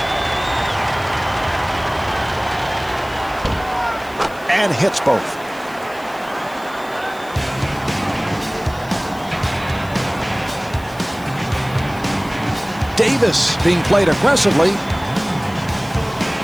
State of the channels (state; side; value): noise; left; hiss, 22 dB below the sound